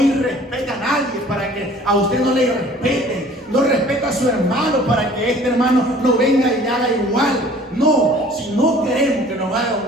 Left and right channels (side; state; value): both; normal; correlation 0.51